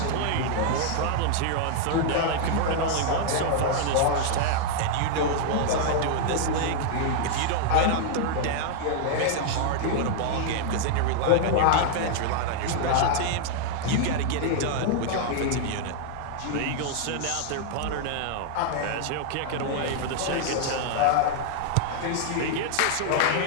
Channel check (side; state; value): both; different; correlation 0.00